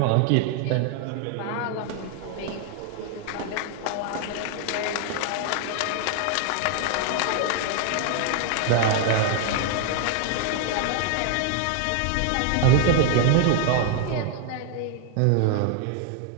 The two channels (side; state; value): both; different; correlation 0.00